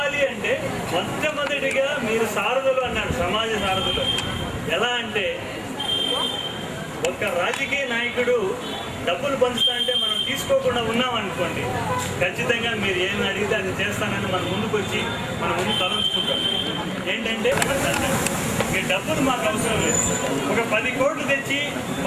అంటే మొట్టమొదటిగా మీరు సారథులు అన్నారు, సమాజ సారథులు. ఎలా అంటే ఒక రాజకీయ నాయకుడు డబ్బులు పంచుతా అంటే మనం తీసుకోకుండా ఉన్నాం అనుకోండి, ఖచ్చితంగా మీరు ఏం అడిగితే అది చేస్తానని మన ముందుకు వచ్చి మన ముందు తలంచుకుంటాం. ఏంటంటే మీ డబ్బులు మాకు అవసరం లేదు. ఒక 10 కోట్లు తెచ్చి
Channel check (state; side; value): identical; both; correlation 1.00